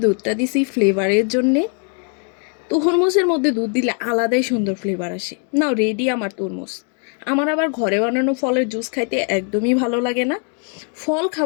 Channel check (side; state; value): right; quieter; 39.9 dB